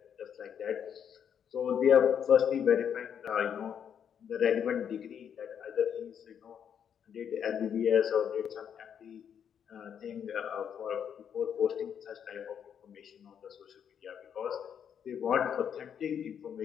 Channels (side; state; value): right; quieter; 8.2 dB